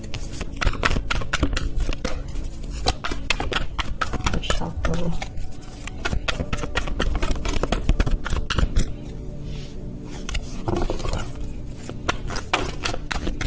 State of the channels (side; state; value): both; identical; correlation 1.00